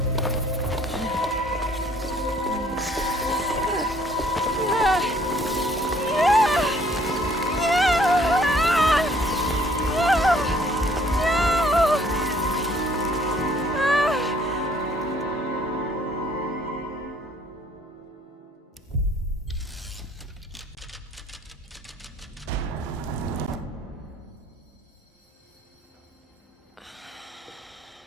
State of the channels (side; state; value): both; normal; correlation 0.61